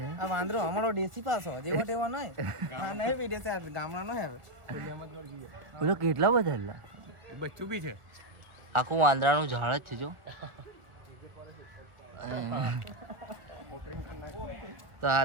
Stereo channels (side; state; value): left; late; 1.4 ms